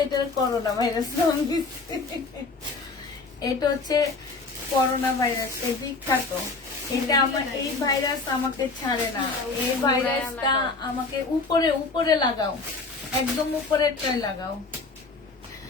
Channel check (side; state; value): right; quieter; 3.9 dB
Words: এটা করোনা ভাইরাস নাম দিচ্ছে। এটা হচ্ছে করোনা ভাইরাস, এই বিখ্যাত। এটা আমার, এই ভাইরাস আমাকে ছাড়ে না। এই ভাইরাসটা আমাকে উপরে উপরে লাগাও, একদম উপরে ট্রাই লাগাও।